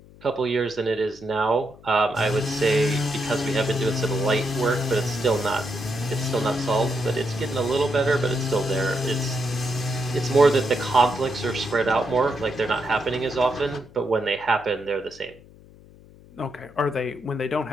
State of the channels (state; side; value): noise; left; hum, 23 dB below the sound